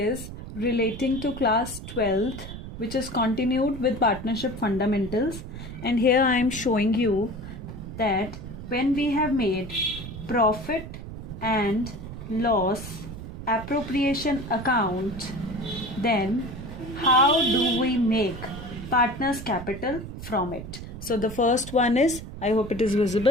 relating to class 12th, which is continued with partnership fundamentals. And here I am showing you that when we have made profit and loss appropriation account, then how do we make partners capital from it? So the first one is, I hope it is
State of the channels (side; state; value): right; noise; rumble, 10 dB below the sound